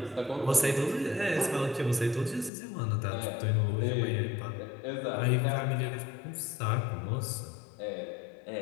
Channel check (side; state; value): right; drops out; at 2.5 s